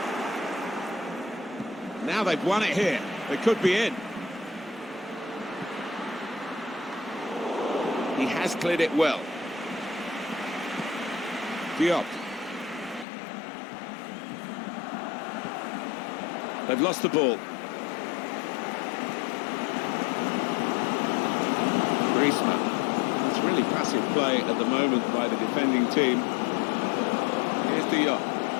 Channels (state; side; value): drops out; right; at 13.1 s